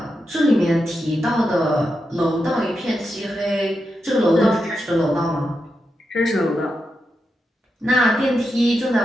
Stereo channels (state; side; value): normal; both; correlation 0.87